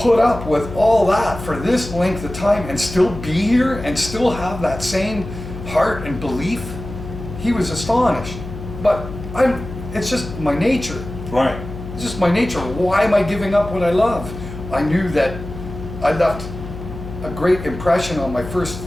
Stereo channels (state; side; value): noise; left; hum, 10 dB below the sound